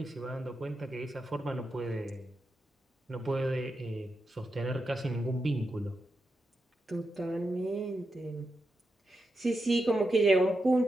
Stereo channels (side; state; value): both; normal; correlation 0.87